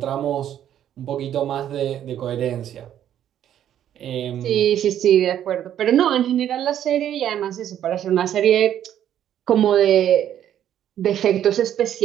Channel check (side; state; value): left; quieter; 10.6 dB